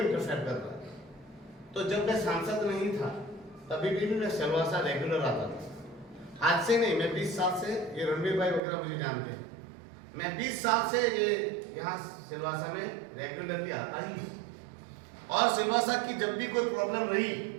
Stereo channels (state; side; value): drops out; left; at 8.6 s